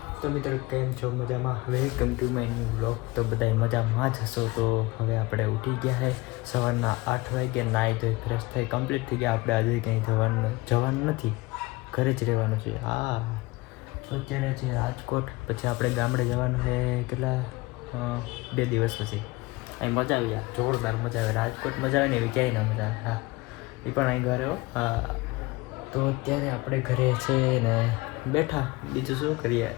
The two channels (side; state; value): right; quieter; 22.4 dB